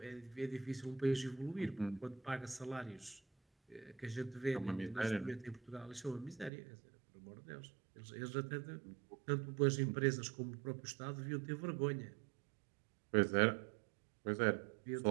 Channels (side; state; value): left; drops out; at 6.5 s